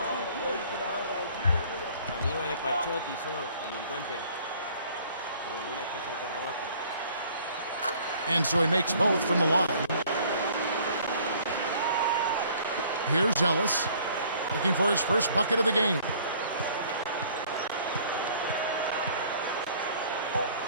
And so he makes both from the line. Here's Ellis, looking for his first bucket of the game.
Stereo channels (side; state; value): both; inverted; correlation -0.55